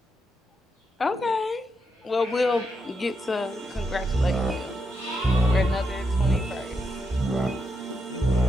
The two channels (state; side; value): normal; both; correlation 0.82